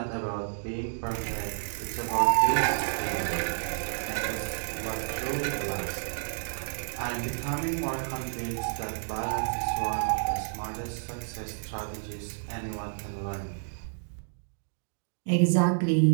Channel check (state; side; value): silent; left; digital silence